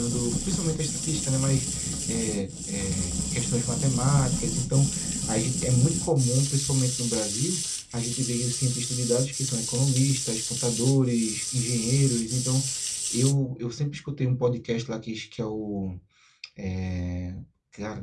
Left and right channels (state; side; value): identical; both; correlation 1.00